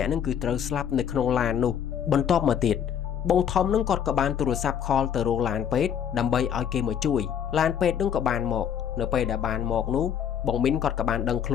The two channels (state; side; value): quieter; right; 8.8 dB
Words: ាក់នឹងគឺត្រូវស្លាប់នៅក្នុងឡាននោះបន្ទាប់មកទៀតបងធំនឹងគាត់ក៏បានទូរស័ព្ទខលទៅរកឡានពេទ្យដើម្បីឲ្យគេមកជួយឡានពេទ្យនឹងក៏បានមកនៅពេលដែលបានមកនោះបងមីនគាត់ក៏បានដឹងខ្ល